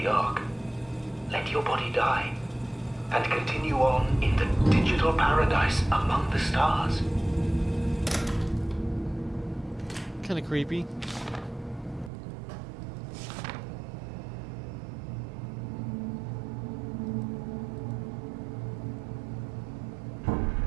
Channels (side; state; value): left; drops out; at 12.1 s